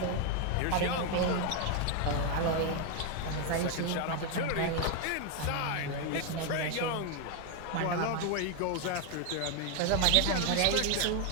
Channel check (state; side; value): different; both; correlation 0.01